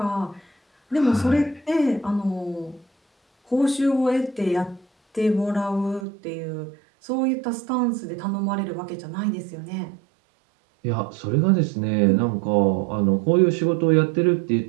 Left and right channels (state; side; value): drops out; left; at 6.1 s